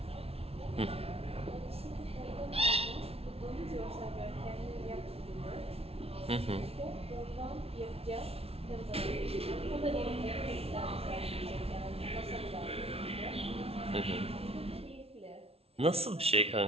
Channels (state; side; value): late; left; 0.29 ms